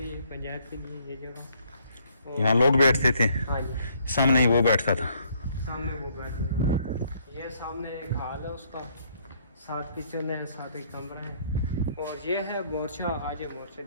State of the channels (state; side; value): inverted; both; correlation -0.67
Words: पंचायत के लिए ये जगह। यहाँ लोग बैठते थे। हाँ जी। सामने ही वो बैठता था। सामने वो बैठता था। ये सामने एक हाल है उसका, 7 किचन है, 7 एक कमरा है। और ये है मोर्चा। आज ये मोर्चा